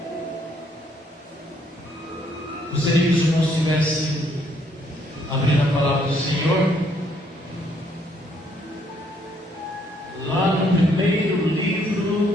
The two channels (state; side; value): normal; both; correlation 0.68